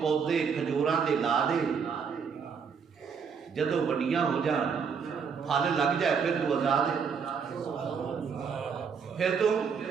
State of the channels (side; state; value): left; quieter; 6.2 dB